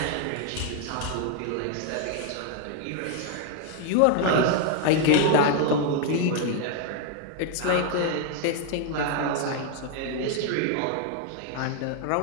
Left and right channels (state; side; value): different; both; correlation 0.00